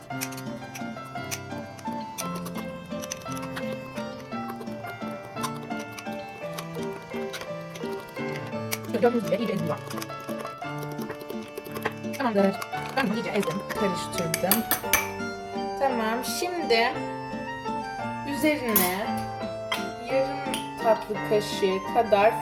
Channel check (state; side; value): identical; both; correlation 1.00